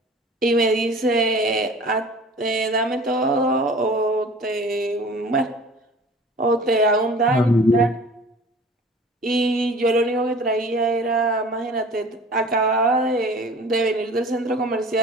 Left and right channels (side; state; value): both; normal; correlation 0.44